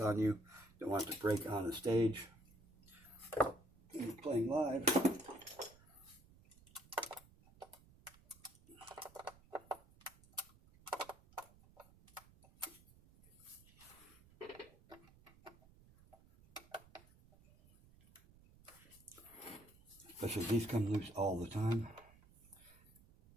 on you. Don't want it to break on the stage. When you're playing live, especially these come loose all the time.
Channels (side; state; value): right; noise; rumble, 25 dB below the sound